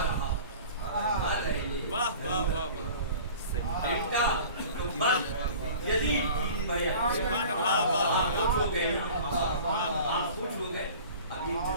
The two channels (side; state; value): both; inverted; correlation -0.43